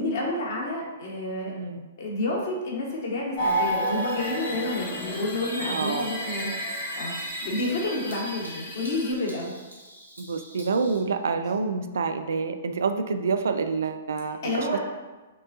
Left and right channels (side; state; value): both; inverted; correlation -0.46